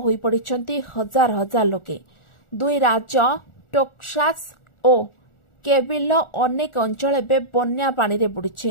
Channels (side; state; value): right; late; 1.4 ms